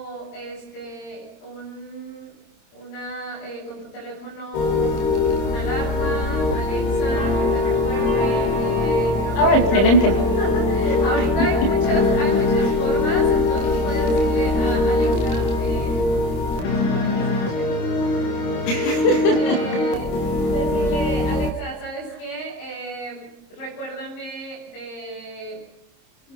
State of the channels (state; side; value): late; right; 26 ms